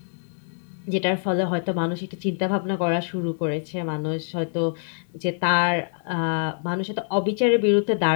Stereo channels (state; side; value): silent; right; 62 dB below the other